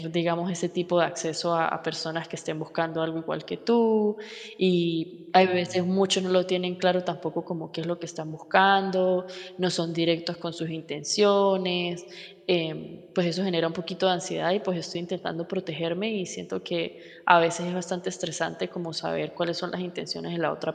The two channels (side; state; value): both; identical; correlation 1.00